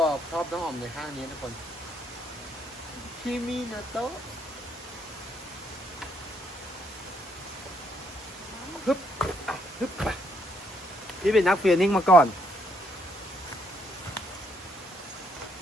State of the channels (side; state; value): both; normal; correlation 0.71